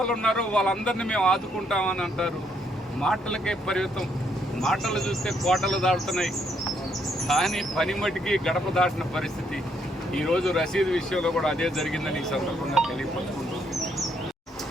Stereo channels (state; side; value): normal; both; correlation 0.72